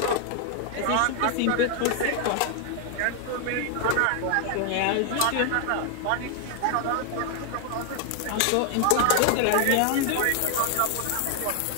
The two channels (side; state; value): both; different; correlation 0.00